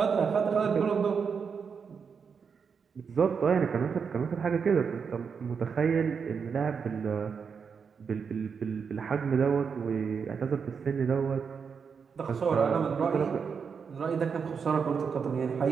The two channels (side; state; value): left; quieter; 6.1 dB